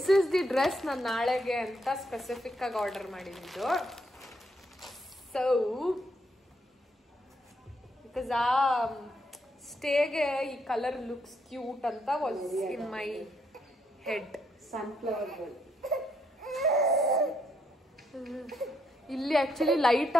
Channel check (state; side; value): normal; both; correlation 0.75